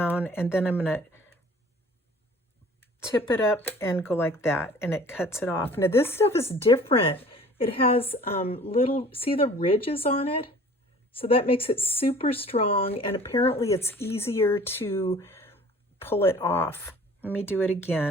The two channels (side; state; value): both; normal; correlation 0.48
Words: and then I'm going to tip it up and go like that, and it cuts it off. Now this stuff is different. It has little, see the ridges on it? So that makes it super strong, and apparently it's easier to pull it off. Let me do it